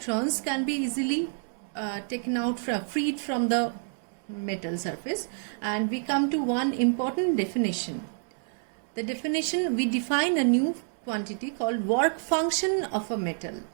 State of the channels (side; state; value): left; silent; 59 dB below the other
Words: can be easily taken out freed from the metal surface, and we come to one important definition. The definition, we define a new quantity called work function of a metal.